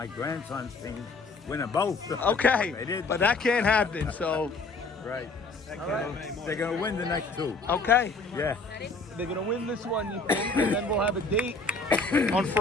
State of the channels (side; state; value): right; quieter; 3.6 dB